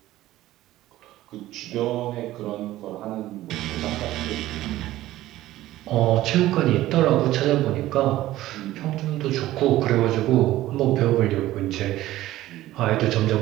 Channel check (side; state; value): left; quieter; 15.4 dB